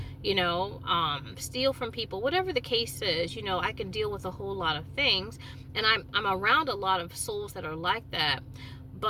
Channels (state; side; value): identical; both; correlation 1.00